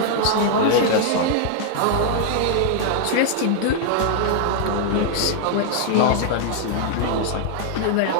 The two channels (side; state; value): both; different; correlation -0.01